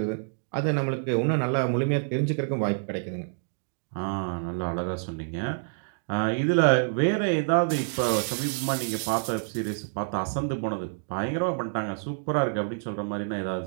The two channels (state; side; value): silent; left; digital silence